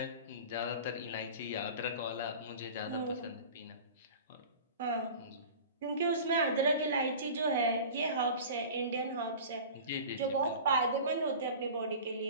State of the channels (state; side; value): inverted; both; correlation -0.38